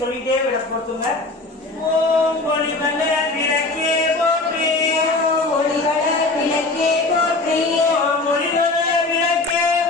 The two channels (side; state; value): right; quieter; 3.2 dB